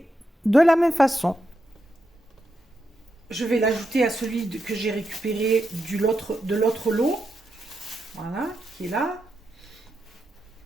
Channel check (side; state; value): both; normal; correlation 0.85